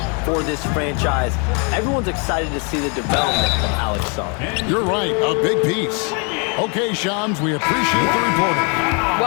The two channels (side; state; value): right; quieter; 35.8 dB